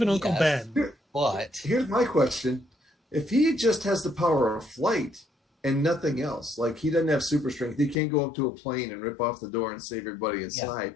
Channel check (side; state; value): right; drops out; at 8.0 s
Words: an Uncle Ben? But here's my question. If he just has the power of flight and nothing else, like he doesn't have super strength, he can't go up to a plane and rip off the door and save everybody inside.